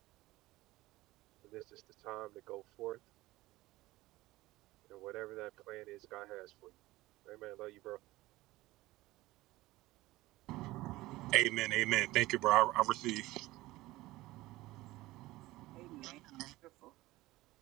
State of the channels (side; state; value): left; quieter; 18.4 dB